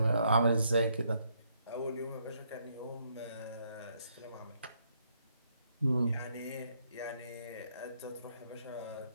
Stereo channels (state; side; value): inverted; both; correlation -0.73